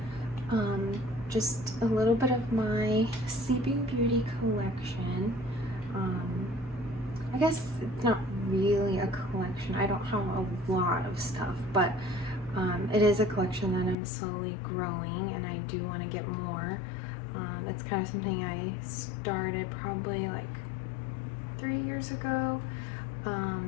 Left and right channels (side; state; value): right; drops out; at 14.0 s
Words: just a little bit of my Sleeping Beauty collection. I guess it's not really a collection. I don't have a lot of stuff, but it is a collection that I'm slowly growing, and I do want to get more. It's kind of something I started probably like 3 years ago.